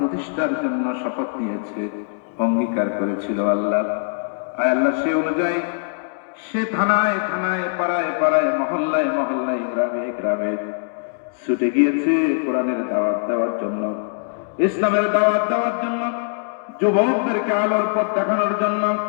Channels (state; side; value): silent; right; digital silence